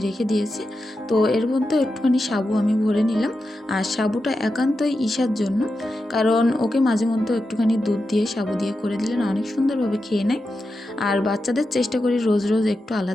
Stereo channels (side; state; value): both; normal; correlation 0.89